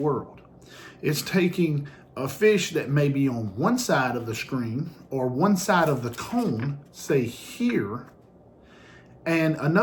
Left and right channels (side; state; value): both; identical; correlation 1.00